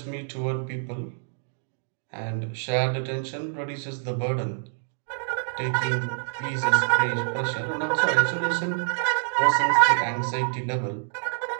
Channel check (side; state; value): left; silent; digital silence